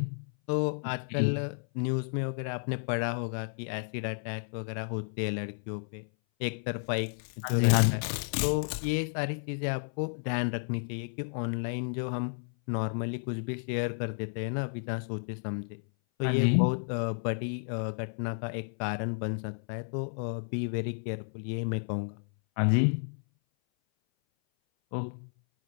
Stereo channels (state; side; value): silent; right; 57 dB below the other